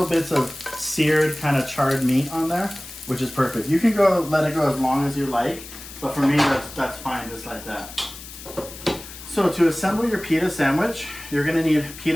bits of seared kind of charred meat on there, which is perfect. You can let it go as long as you like, But for me, that's fine just like that. So to assemble your pita sandwich, you're gonna need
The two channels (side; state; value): left; noise; hiss, 14 dB below the sound